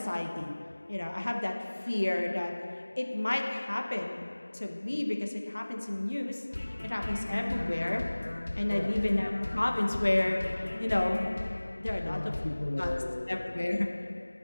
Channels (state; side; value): inverted; both; correlation -1.00